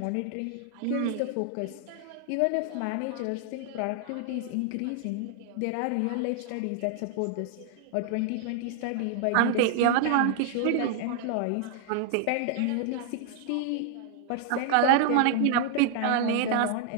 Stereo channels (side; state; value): both; different; correlation 0.00